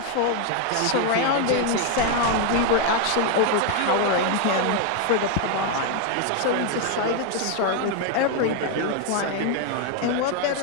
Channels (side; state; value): both; different; correlation 0.01